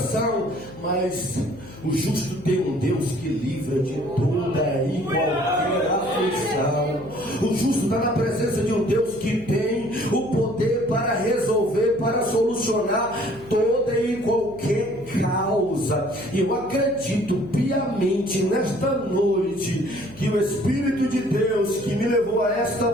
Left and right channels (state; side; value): noise; left; hum, 18 dB below the sound